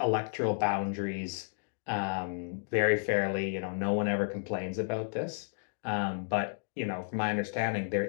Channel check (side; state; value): right; silent; digital silence